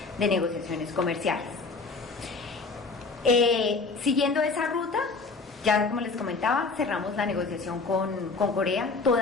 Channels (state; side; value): quieter; right; 4.1 dB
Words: de negociaciones comerciales. Siguiendo esa ruta, ya como les comentaba, cerramos la negociación con Corea.